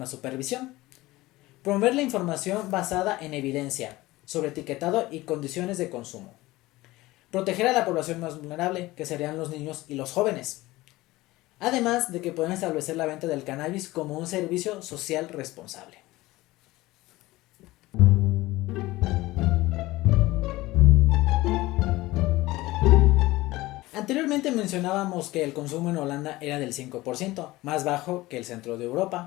supervisión, promover la información basada en evidencia sobre etiquetado y condiciones de consumo, proteger a la población más vulnerable, que serían los niños y los jóvenes, además de que pueden establecer la venta del cannabis como un servicio social responsable. Anteriormente mencionábamos que el consumo en Holanda era del 5%, más bajo que el centro de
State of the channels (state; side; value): quieter; right; 18.9 dB